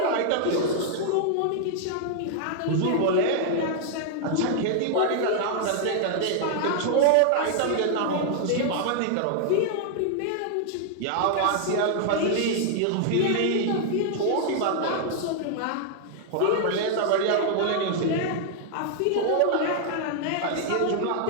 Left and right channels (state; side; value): different; both; correlation -0.01